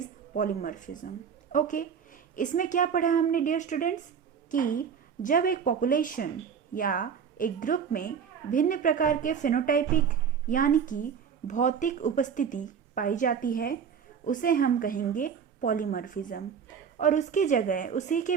polymorphism. Okay, इसमें क्या पढ़ा हमने dear students कि जब एक population या एक ग्रुप में भिन्न प्रकार के फेनोटाइपिक यानी कि भौतिक उपस्थिति पाई जाती है उसे हम कहेंगे पॉलीमॉर्फिज्म, और उसकी जगह उसी के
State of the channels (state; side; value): quieter; left; 7.1 dB